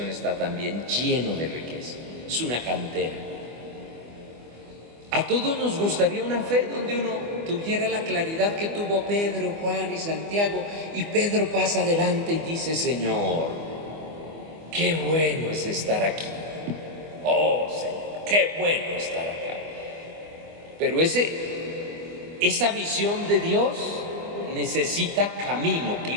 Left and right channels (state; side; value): late; left; 24 ms